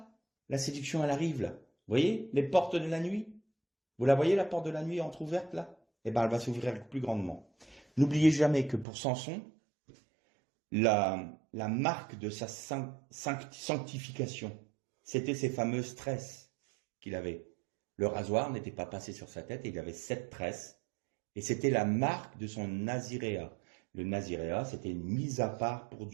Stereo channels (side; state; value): left; drops out; at 8.8 s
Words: La séduction, elle arrive, là. Vous voyez, les portes de la nuit? Vous la voyez, la porte de la nuit entrouverte, là? Eh ben, elle va s'ouvrir plus grandement. N'oubliez jamais que pour Samson, la marque de sa sanctification, c'était ces fameuses tresses qu'il avait. Le rasoir n'était pas passé sur sa tête et il avait 7 tresses. Et c'était la marque de son naziréat. Le naziréat, c'était une mise à part pour